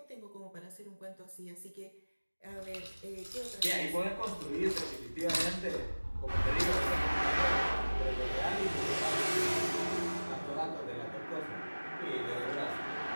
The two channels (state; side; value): inverted; both; correlation -1.00